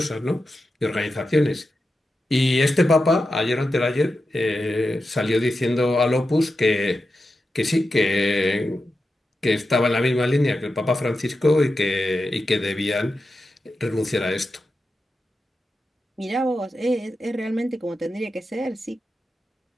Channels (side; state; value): both; normal; correlation 0.90